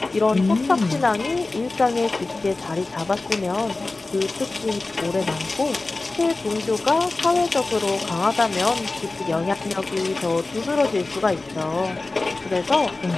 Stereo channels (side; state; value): right; quieter; 3.3 dB